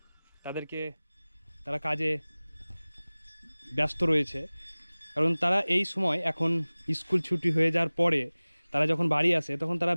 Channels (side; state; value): both; inverted; correlation -0.99